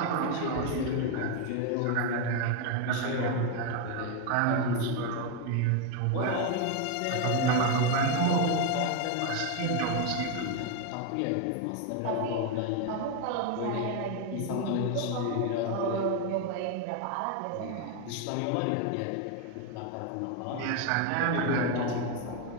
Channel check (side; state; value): both; different; correlation 0.01